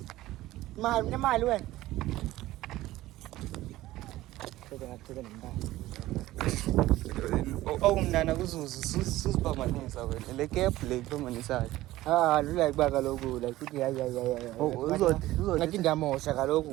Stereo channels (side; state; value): left; quieter; 16.4 dB